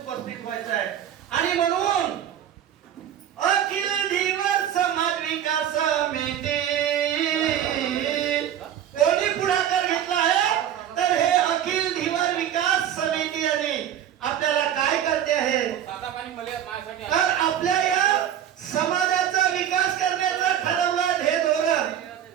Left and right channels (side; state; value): left; quieter; 10.3 dB